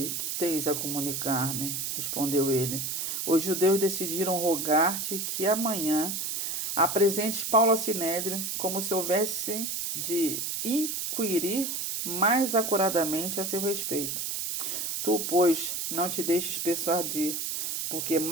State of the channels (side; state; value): right; noise; hiss, 2 dB below the sound